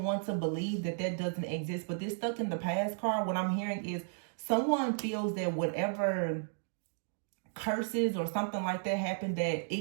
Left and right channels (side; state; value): left; silent; digital silence